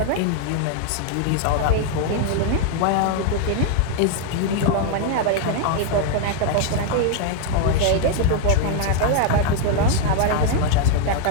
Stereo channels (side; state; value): both; different; correlation 0.00